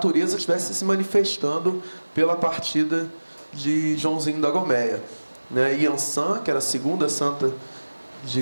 estivesse se manifestando pela partida de Joãozinho da Gomeia, né? Iansã, que era a segunda santa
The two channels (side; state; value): both; inverted; correlation -1.00